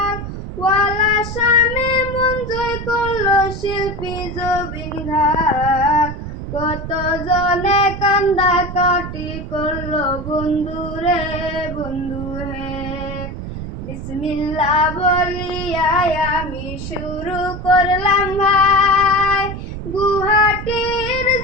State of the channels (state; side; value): noise; right; rumble, 8 dB below the sound